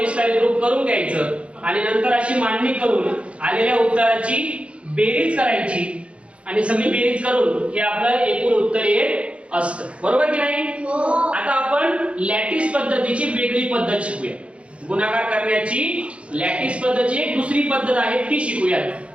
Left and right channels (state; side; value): late; left; 0.061 ms